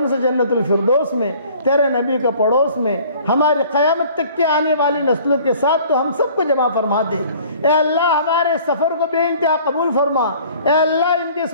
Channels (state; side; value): inverted; both; correlation -0.51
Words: سے جنت الفردوس میں تیرے نبی کا پڑوس میں ہماری قیامت تک کے آنے والی نسلوں کے ساتھ تو ہم سب کو جمع فرما دے اے اللہ ہمارے سفر کو بے انتہا قبول فرما اے اللہ ان کے